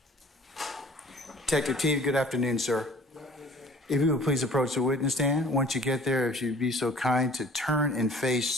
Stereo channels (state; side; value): normal; both; correlation 0.49